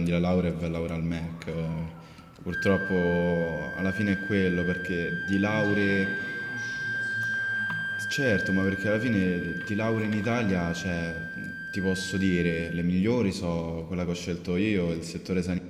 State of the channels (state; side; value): identical; both; correlation 1.00